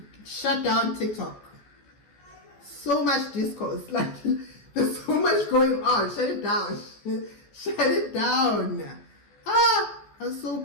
shut down TikTok. So much discourse, like, there's so much going on. Shut it down. Shut it down. I was so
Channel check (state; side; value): late; right; 14 ms